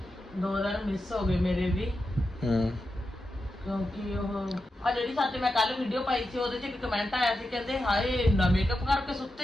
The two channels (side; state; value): both; normal; correlation 0.89